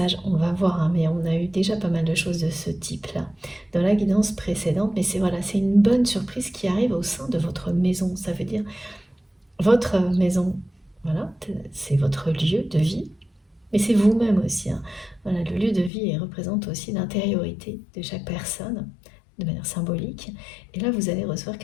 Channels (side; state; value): right; drops out; at 15.9 s